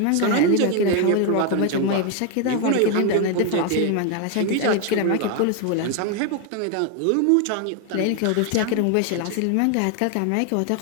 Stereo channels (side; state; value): both; different; correlation 0.01